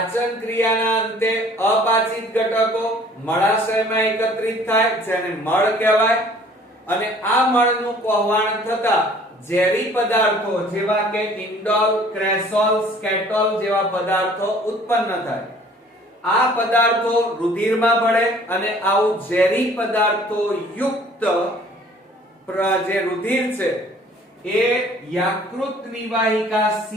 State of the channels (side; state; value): both; normal; correlation 0.53